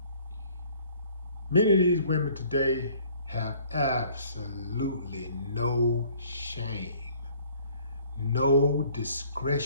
Many of these women today have absolutely no shame, no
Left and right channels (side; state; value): both; inverted; correlation -0.56